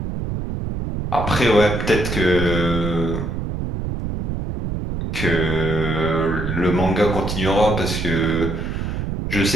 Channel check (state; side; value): noise; right; rumble, 3 dB below the sound